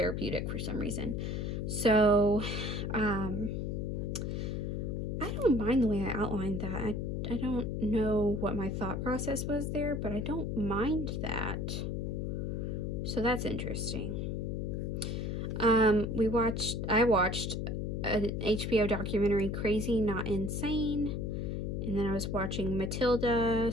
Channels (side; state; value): left; noise; hum, 2 dB below the sound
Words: for some reason. So I don't mind the way I outlined that. I don't know what my thought process was there, but I don't mind that. So that's interesting. I watched an HBO documentary, Crazy Not Insane, and then I was watching Matilda,